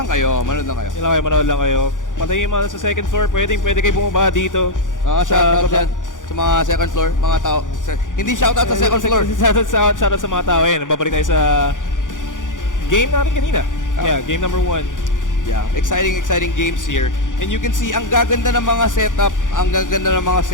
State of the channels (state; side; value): late; right; 0.87 ms